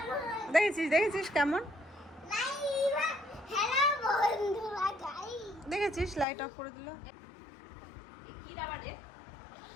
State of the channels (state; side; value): drops out; right; at 6.2 s